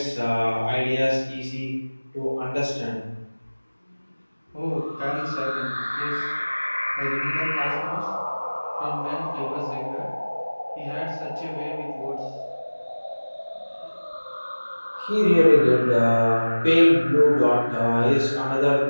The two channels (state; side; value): inverted; both; correlation -1.00